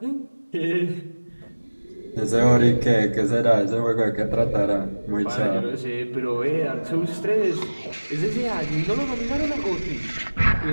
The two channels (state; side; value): inverted; both; correlation -1.00